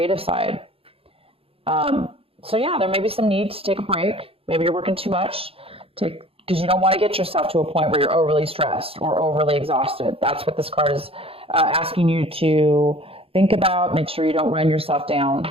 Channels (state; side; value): late; left; 0.27 ms